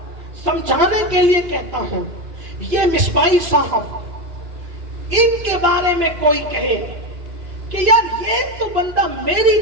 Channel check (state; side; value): late; left; 2.9 ms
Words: سمجھانے کے لیے کہتا ہوں, یہ مصباحی صاحب ان کے بارے میں کوئی کہے کہ یار یہ تو بندہ میری